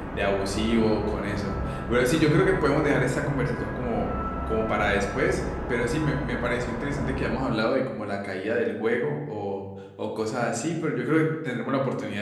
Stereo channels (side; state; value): both; identical; correlation 1.00